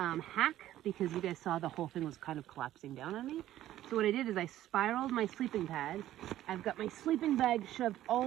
because you guys saw the whole thing was kind of collapsing down on me. So what I did is I spiraled my sleeping pad. I've got my sleeping bag shoved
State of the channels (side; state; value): left; quieter; 13.4 dB